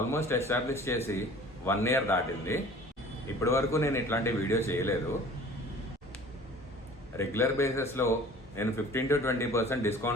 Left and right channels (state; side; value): normal; both; correlation 0.47